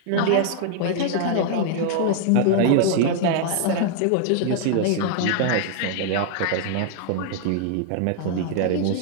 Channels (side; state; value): both; different; correlation -0.01